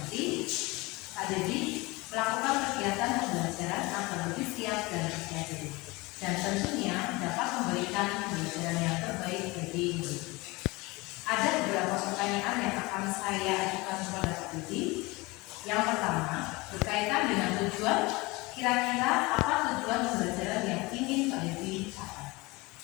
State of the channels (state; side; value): quieter; right; 23.5 dB